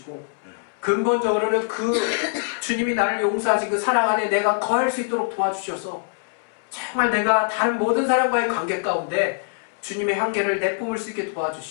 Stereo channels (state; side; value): silent; right; 63 dB below the other